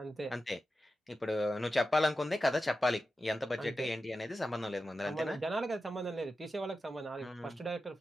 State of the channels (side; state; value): both; normal; correlation 0.92